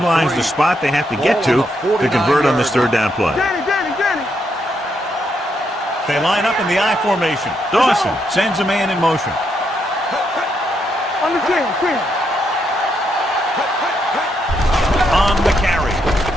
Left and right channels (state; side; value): normal; both; correlation 0.78